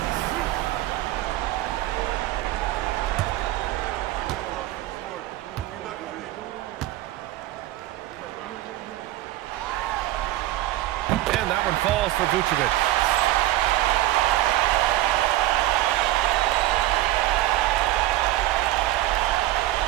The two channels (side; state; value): left; quieter; 15.7 dB